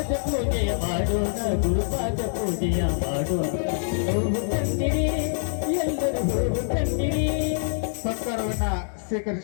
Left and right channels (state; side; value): silent; right; digital silence